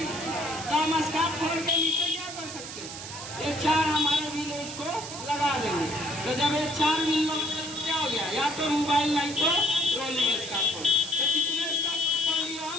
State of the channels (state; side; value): noise; right; hiss, 10 dB below the sound